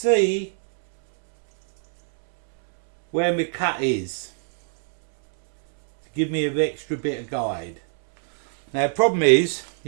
where my cut is, to give me an extra bit of guide. Now the problem is,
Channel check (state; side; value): silent; left; 64 dB below the other